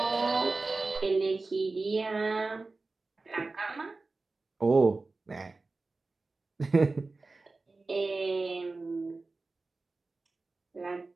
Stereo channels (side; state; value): left; quieter; 3.6 dB